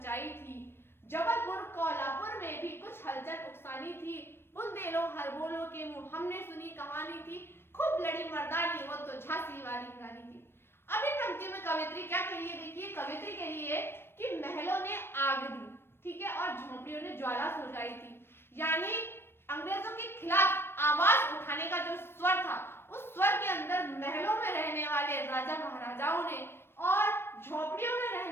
थी, जबलपुर कोल्हापुर में भी कुछ हलचल उकसानी थी, बुंदेलो हरबोलो के मुंह हमने सुनी कहानी थी, खूब लड़ी मर्दानी वो तो झांसी वाली रानी थी। अब इन पंक्तियों में कवियत्री क्या कह रही है? देखिए, कवियत्री कह रही है कि महलों ने आग दी, ठीक है, और झोंपड़ियों ने ज्वाला सुलगाई थी, यानी अंग्रेजों के खिलाफ आवाज उठाने का जो स्वर था, उस स्वर के अंदर महलों में रहने वाले राजा महाराजाओं ने और झोपड़ियों में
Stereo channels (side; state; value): right; late; 0.11 ms